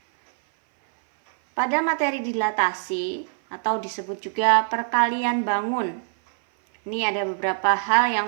pada materi dilatasi atau disebut juga perkalian bangun, ini ada beberapa hal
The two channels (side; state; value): left; silent; 58 dB below the other